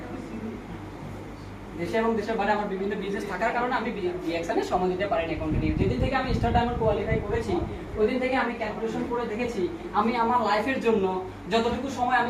দেশে এবং দেশের বাইরে আমার বিভিন্ন বিজনেস থাকার কারণে আমি ডিএক্সএন এ সময় দিতে পারিনি কন্টিনিউ। যেদিন থেকে আমি স্টার ডায়মন্ড কোয়ালিফাই করেছি, ওই দিন থেকে আমি ক্যালকুলেশন করে দেখেছি, আমি আমার লাইফের জন্য যতটুকু সময়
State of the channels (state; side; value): identical; both; correlation 1.00